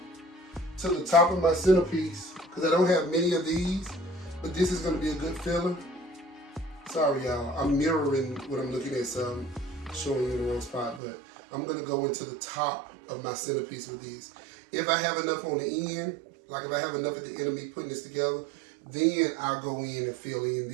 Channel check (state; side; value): drops out; left; at 11.0 s